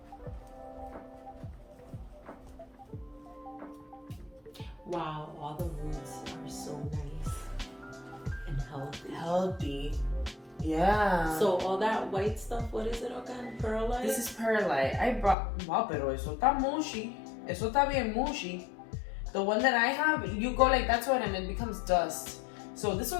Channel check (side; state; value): right; drops out; at 15.4 s